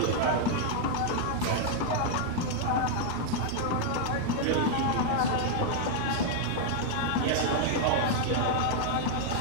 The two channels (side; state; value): both; different; correlation -0.01